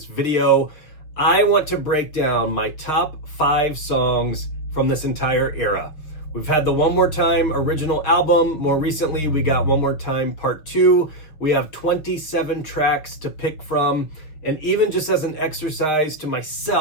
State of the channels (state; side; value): late; right; 6.2 ms